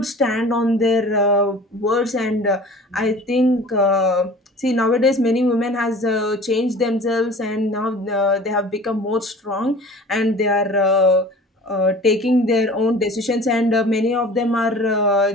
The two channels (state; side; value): normal; both; correlation 0.43